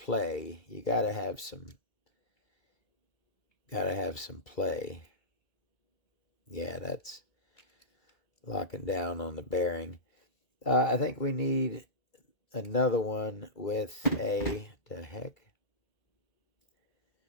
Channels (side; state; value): right; late; 2.3 ms